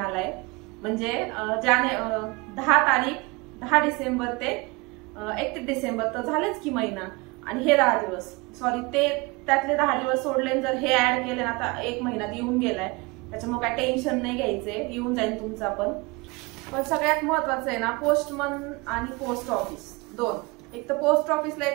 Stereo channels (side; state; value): left; quieter; 26.0 dB